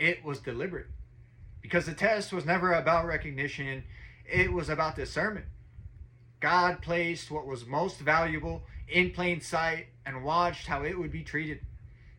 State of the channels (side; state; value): both; identical; correlation 1.00